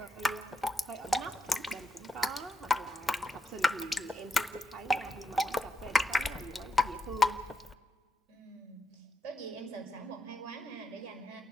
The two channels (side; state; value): both; normal; correlation 0.81